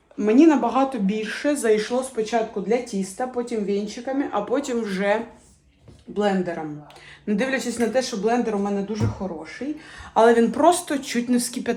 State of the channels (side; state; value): both; identical; correlation 1.00